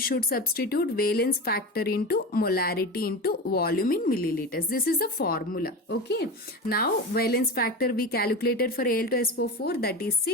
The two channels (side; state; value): both; normal; correlation 0.26